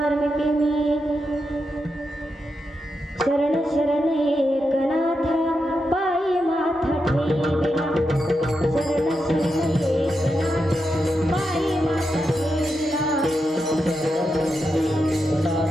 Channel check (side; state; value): both; normal; correlation 0.86